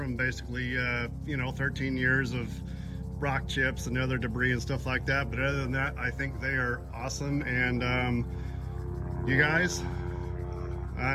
basically 13 years of rock chips and other debris and stuff like that, but other than that, I think they are awesome. And you guys,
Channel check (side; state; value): both; identical; correlation 1.00